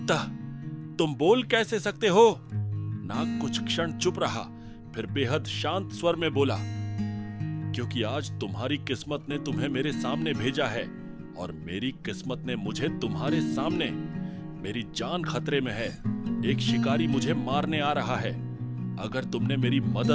तुम बोल कैसे सकते हो? नाग कुछ क्षण चुप रहा, फिर बेहद शांत स्वर में बोला, क्योंकि आज तुम्हारी किस्मत ने तुम्हें मेरे सामने भेजा है और मेरी किस्मत ने मुझे तुम्हारे सामने। मेरी जान खतरे में है। एक शिकारी मुझे मारने आ रहा है। अगर तुमने मेरी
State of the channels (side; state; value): both; identical; correlation 1.00